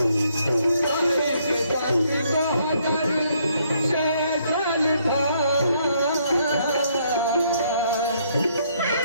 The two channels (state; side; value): inverted; both; correlation -0.70